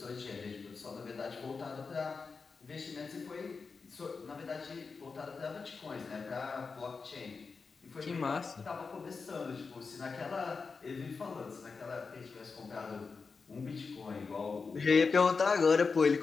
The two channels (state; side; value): quieter; right; 4.8 dB